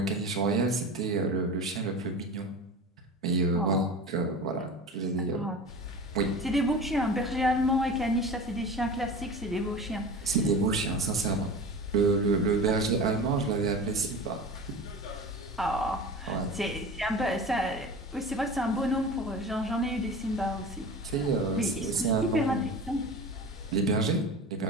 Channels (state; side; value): normal; both; correlation 0.33